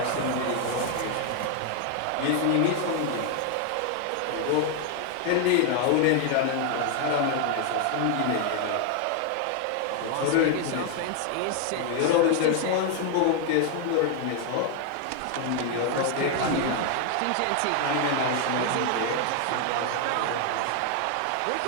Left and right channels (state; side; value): different; both; correlation 0.00